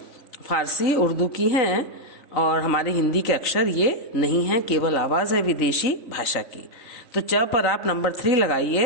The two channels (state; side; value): late; right; 3.9 ms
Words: फारसी उर्दू की हैं और हमारे हिंदी के अक्षर ये नहीं हैं, केवल आवाज़ है विदेशी भाषा की। तो च पर आप नंबर 3